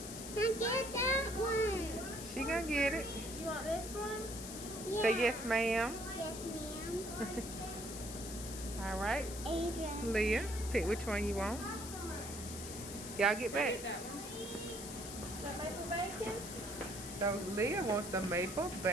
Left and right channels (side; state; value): left; noise; hiss, 9 dB below the sound